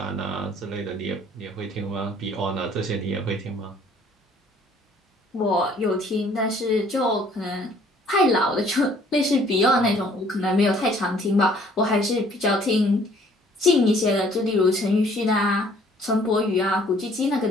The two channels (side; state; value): both; normal; correlation 0.58